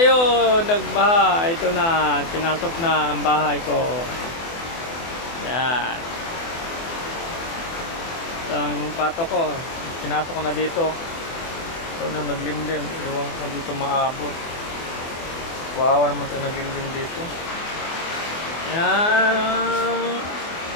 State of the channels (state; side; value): late; right; 24 ms